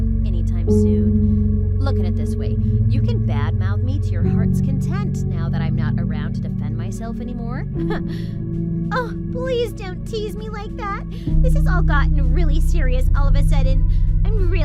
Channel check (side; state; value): both; identical; correlation 1.00